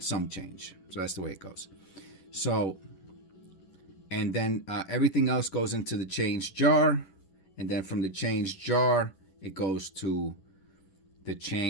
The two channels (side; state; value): right; late; 10 ms